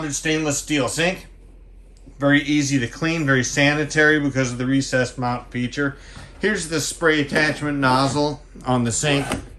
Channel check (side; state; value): both; identical; correlation 1.00